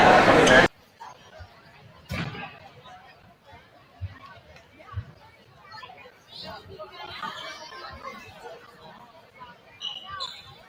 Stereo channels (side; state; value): both; identical; correlation 1.00